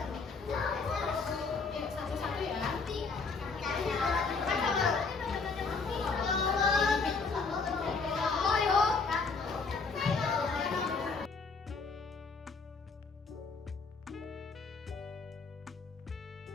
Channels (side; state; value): right; quieter; 4.5 dB